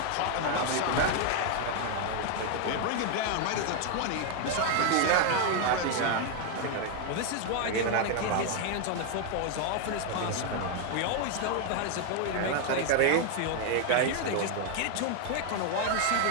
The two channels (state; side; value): different; both; correlation 0.01